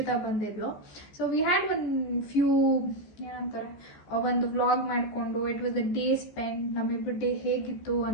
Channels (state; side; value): late; right; 14 ms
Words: ಬಂದಿದ್ಲು. ಸೊ ವಿ ಹ್ಯಾಡ್ ಫ್ಯೂ ಏನಂತಾರೆ ಒಂದು ವ್ಲಾಗ್ ಮಾಡಿಕೊಂಡು it was a day spend. ನಮ್ಮಿಬ್ಬರು ಡೇ ಹೇಗಿತ್ತು